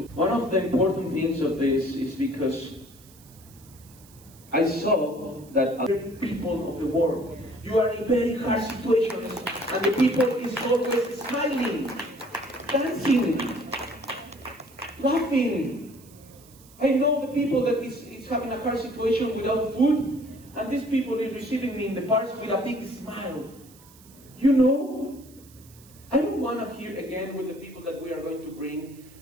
One of the important things of this is because I saw that other people of the world, you are in very hard situations, and the people is always smiling, dancing, laughing. I know the people that is having a hard situation without food, and these people is receiving me in the parks with a big smile. You know, I don't want to hear again with the people that we are going to bring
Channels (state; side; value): noise; right; hiss, 24 dB below the sound